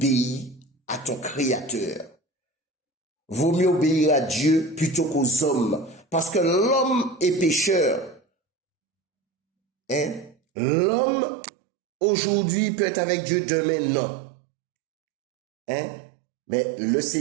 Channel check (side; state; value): left; drops out; at 10.4 s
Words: à ton Créateur. Vaut mieux obéir à Dieu plutôt qu'aux hommes, parce que l'homme est pécheur. Hein? L'homme, aujourd'hui, peut être avec Dieu, demain, non. Hein? Mais le